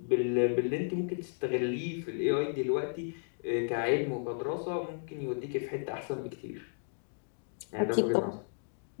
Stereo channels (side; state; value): right; silent; digital silence